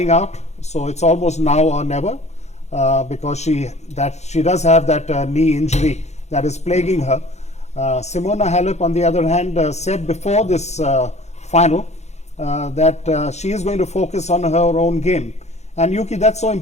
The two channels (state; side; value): late; right; 0.32 ms